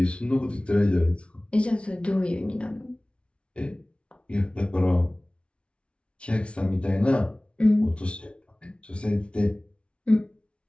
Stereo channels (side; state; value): right; late; 0.059 ms